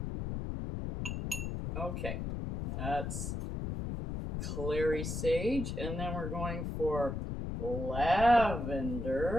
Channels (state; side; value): noise; left; rumble, 4 dB below the sound